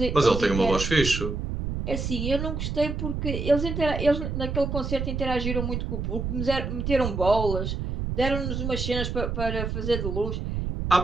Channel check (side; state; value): right; noise; rumble, 3 dB below the sound